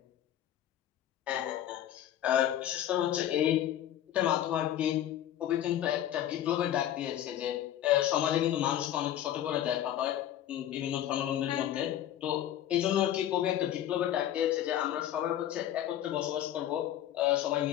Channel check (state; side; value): quieter; right; 11.7 dB